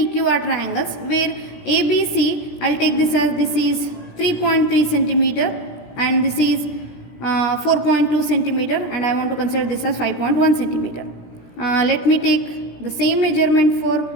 are triangles, where ABC, I'll take this as this is 3.3 centimeter and this is 4.2 centimeter, and I want to consider this as 5.1 centimeter. Let me take the same measurement for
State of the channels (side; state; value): right; late; 17 ms